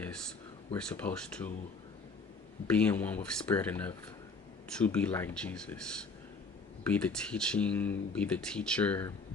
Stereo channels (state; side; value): quieter; right; 4.0 dB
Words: we're supposed to be in one with spirit enough to be like Jesus. Be the teaching, be the teacher,